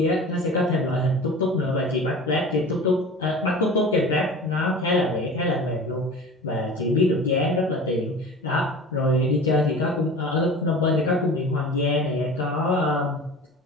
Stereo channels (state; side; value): normal; both; correlation 0.37